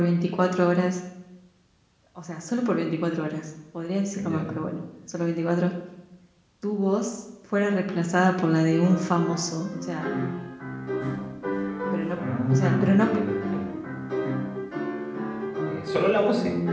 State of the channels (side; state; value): both; identical; correlation 1.00